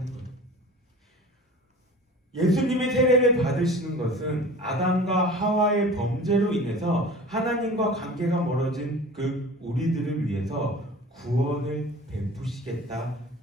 거예요. 예수님의 세례를 받으시는 것은 아담과 하와의 범죄로 인해서 하나님과 관계가 멀어진 그 우리들을 위해서 구원을 베푸시겠다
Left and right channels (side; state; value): both; normal; correlation 0.40